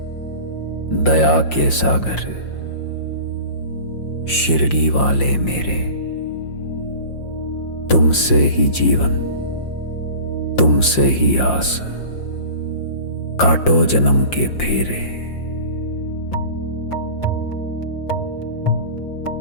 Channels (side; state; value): right; late; 5.7 ms